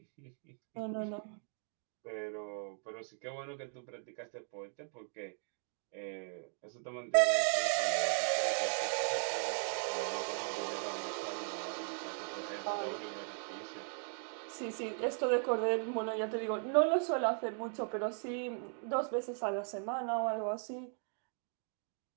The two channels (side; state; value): left; silent; 53 dB below the other